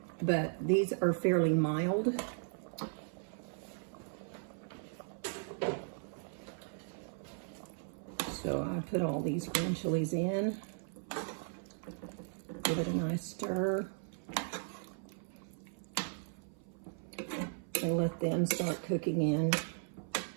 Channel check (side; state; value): left; silent; 53 dB below the other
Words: but these are fairly mild. So I put all these green chilies in. Give it a nice stir. And let them start cooking in